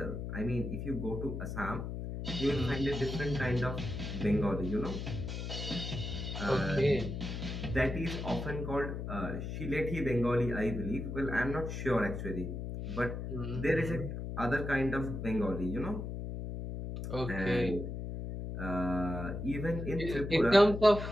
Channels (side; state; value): left; noise; hum, 5 dB below the sound